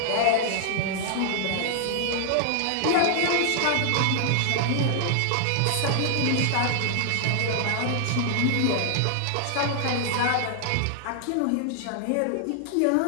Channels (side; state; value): both; different; correlation 0.00